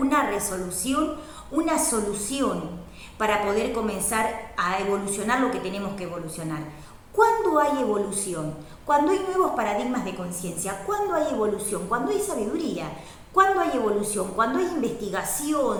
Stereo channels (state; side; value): identical; both; correlation 1.00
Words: resolución, una solución, para poder comenzar a evolucionar lo que tenemos que evolucionar. ¿Cuándo hay evolución? Cuando hay nuevos paradigmas de conciencia. ¿Cuándo hay evolución? Cuando hay sabiduría. ¿Cuándo hay evolución? Cuando hay